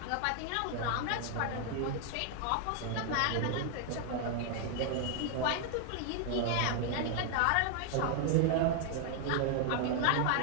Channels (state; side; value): different; both; correlation 0.00